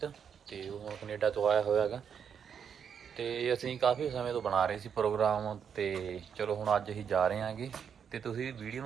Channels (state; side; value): quieter; left; 7.5 dB